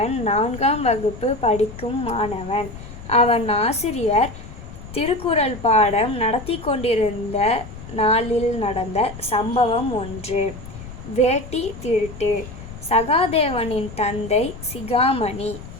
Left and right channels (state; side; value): noise; left; rumble, 13 dB below the sound